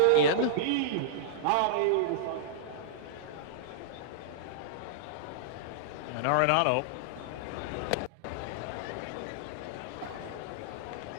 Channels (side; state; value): both; different; correlation -0.02